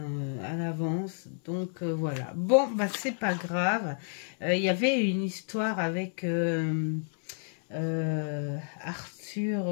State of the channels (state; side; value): silent; right; digital silence